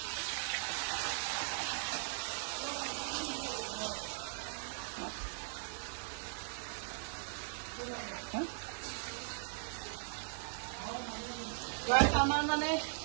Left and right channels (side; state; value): left; silent; 52 dB below the other